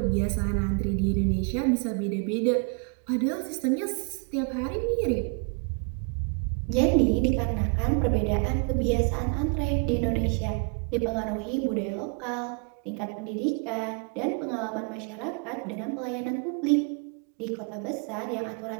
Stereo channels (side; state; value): left; quieter; 36.8 dB